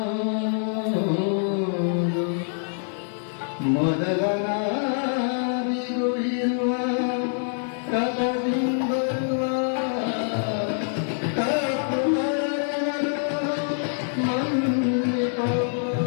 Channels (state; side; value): silent; right; digital silence